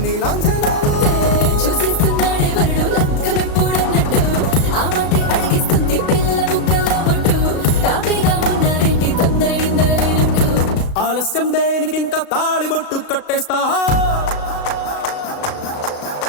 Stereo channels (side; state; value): right; late; 35 ms